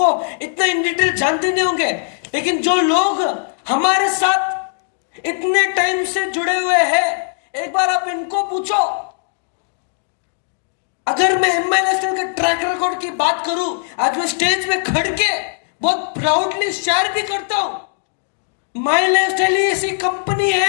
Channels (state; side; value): silent; right; digital silence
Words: इतना इन डिटेल जानते नहीं होंगे, लेकिन जो लोग हमारे साथ इतने टाइम से जुड़े हुए हैं, एक बार आप इनको पूछो। अगर मैं एमआई नेशनल के ट्रैक रिकॉर्ड की बात करूं, आज मैं स्टेज में खड़ के बहुत प्राउडली शेयर भी करता हूं। माई लाइफस्टाइल ऐसी कंपनी